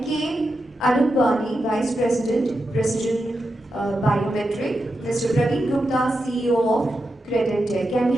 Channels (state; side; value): normal; both; correlation 0.88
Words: Anupani, Vice President, Precision Biometric, Mr. Praveen Gupta, CEO of Credit Tech. Can we